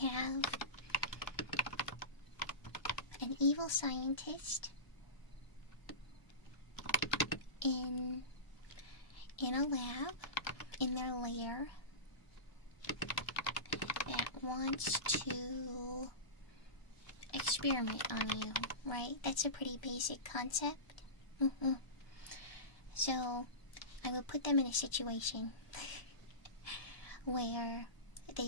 an evil scientist in a lab, in their lair, that wants to experiment on you, right? That's a pretty basic concept. So, I would put them in a situation where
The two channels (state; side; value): late; right; 1.0 ms